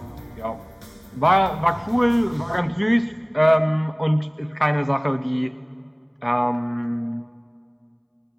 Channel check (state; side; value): identical; both; correlation 1.00